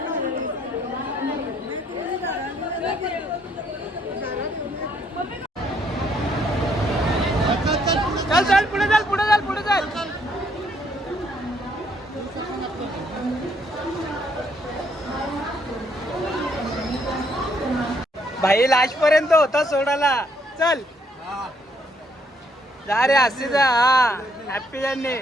चल चल पुढे चल, पुढे चल, पुढे चल. भाई लास्ट पर्यंत होता सोडाला. चल जा रे, असे जा. हा हॅपी जर्नी,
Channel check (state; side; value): normal; both; correlation 0.70